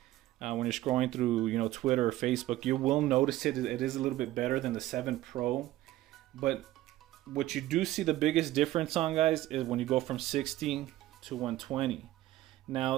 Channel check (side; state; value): left; quieter; 15.5 dB